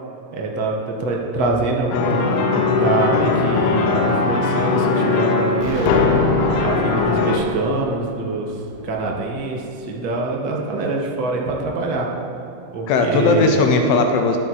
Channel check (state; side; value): late; right; 15 ms